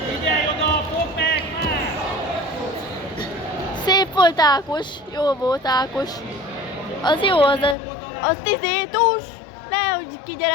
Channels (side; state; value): right; drops out; at 7.8 s